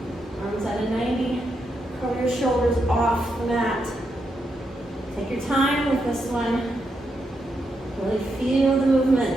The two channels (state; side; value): normal; both; correlation 0.82